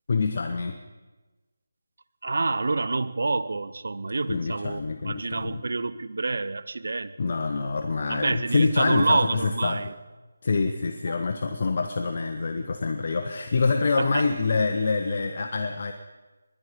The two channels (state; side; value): inverted; both; correlation -0.91